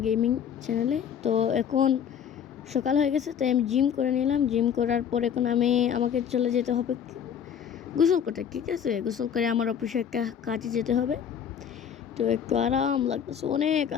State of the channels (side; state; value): right; quieter; 8.3 dB